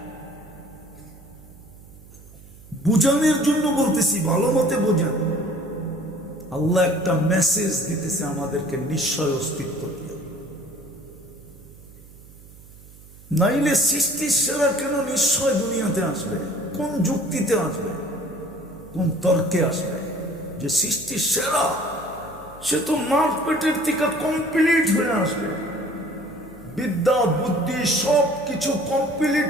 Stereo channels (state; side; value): noise; right; hum, 21 dB below the sound